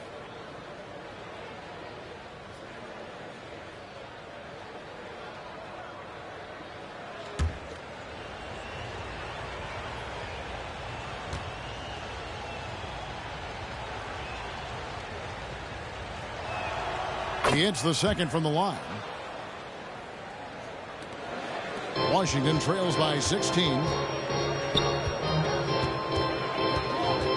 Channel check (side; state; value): both; identical; correlation 1.00